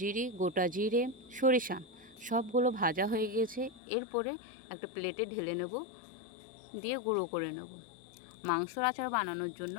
গোটা জিরে, সরিষা সবগুলো ভাজা হয়ে গেছে। এরপরে একটা প্লেটে ঢেলে নেব, দিয়ে গুঁড়ো করে নেব। মাংসর আচার বানানোর জন্য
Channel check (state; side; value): drops out; right; at 3.8 s